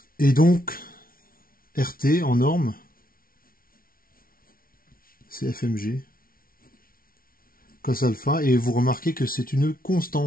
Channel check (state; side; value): late; right; 0.43 ms